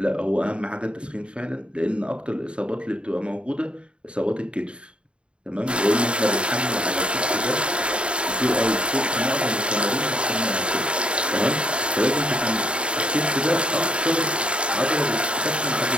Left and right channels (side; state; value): left; late; 0.055 ms